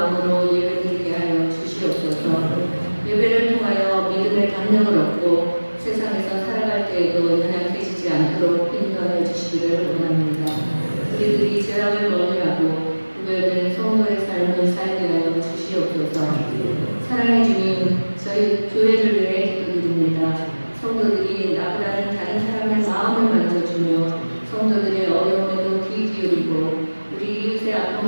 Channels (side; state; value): both; inverted; correlation -1.00